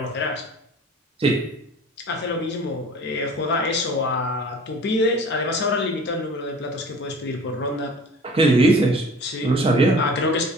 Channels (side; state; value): both; normal; correlation 0.45